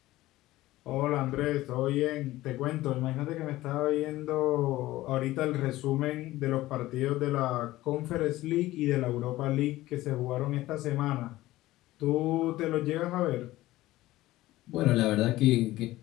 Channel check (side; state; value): right; quieter; 16.8 dB